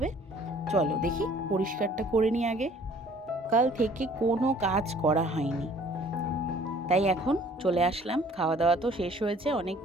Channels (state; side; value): normal; both; correlation 0.55